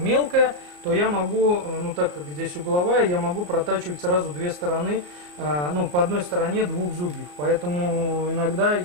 мелкая, то я могу, ну, так как здесь угловая, я могу протачивать сразу две стороны, ну, по одной стороне двух зубьев, поэтому иногда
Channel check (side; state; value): left; late; 34 ms